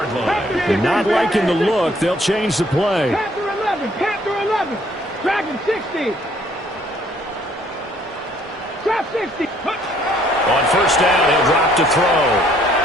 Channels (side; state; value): both; normal; correlation 0.62